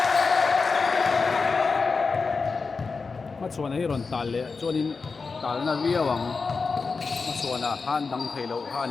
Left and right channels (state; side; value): quieter; right; 4.6 dB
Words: chuan hi ron tal le chuanin tal na ria wang ma chuana han dang theilo ha